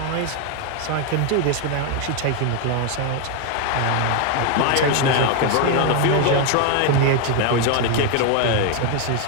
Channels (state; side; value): different; both; correlation 0.01